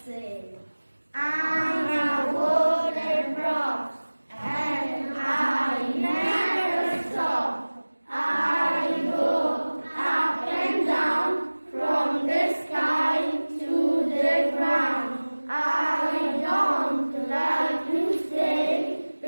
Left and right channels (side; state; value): both; inverted; correlation -1.00